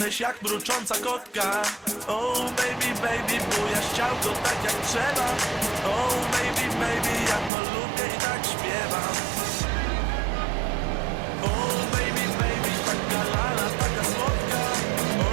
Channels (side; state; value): left; drops out; at 7.5 s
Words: jak mrucząca kotka. Oh baby, baby, bujasz ciałko tak jak trzeba. Oh baby, baby, ja to lubię i tak śpiewam. Oh baby, baby, taka lala, taka słodka.